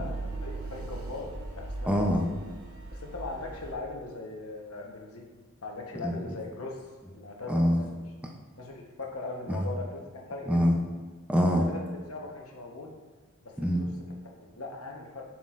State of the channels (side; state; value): both; normal; correlation 0.77